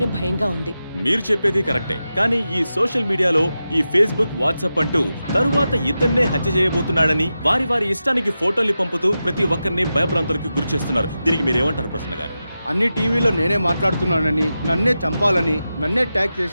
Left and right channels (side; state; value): both; inverted; correlation -0.91